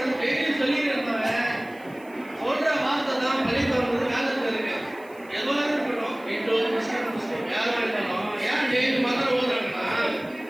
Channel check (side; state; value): right; noise; hiss, 27 dB below the sound